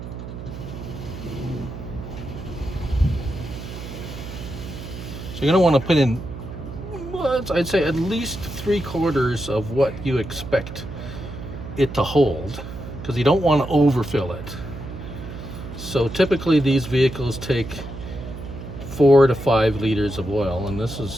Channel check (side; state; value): right; noise; hum, 10 dB below the sound